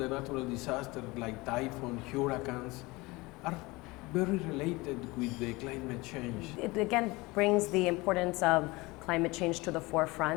natural disasters like typhoon, hurricanes, are very related with the climate change. It again brings the importance of climate change to the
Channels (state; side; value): quieter; right; 22.9 dB